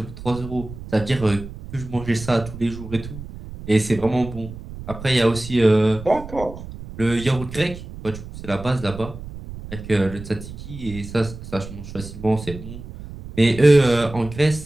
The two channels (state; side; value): noise; right; rumble, 12 dB below the sound